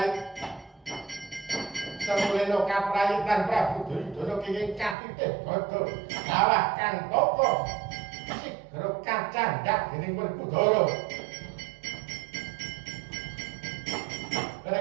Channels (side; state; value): left; drops out; at 5.0 s